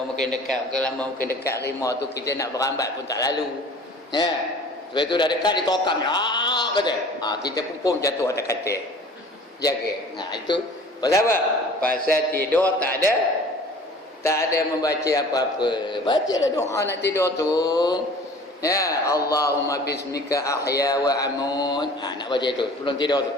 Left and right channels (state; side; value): normal; both; correlation 0.46